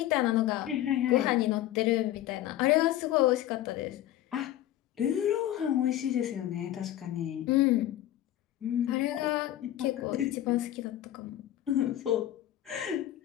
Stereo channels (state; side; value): quieter; right; 13.4 dB